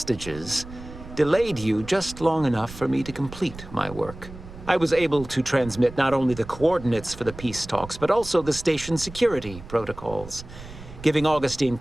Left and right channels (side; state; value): right; noise; rumble, 15 dB below the sound